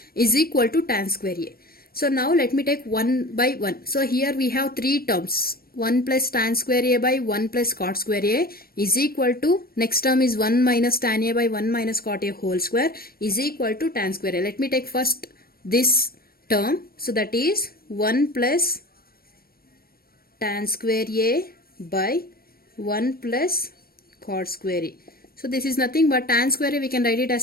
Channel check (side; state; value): right; late; 0.44 ms